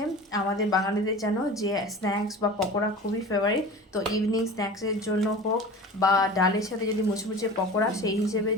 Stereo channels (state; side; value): normal; both; correlation 0.37